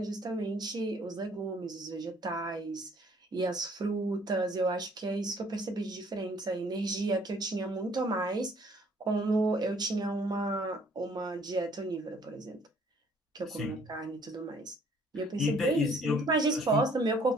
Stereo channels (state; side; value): normal; both; correlation 0.60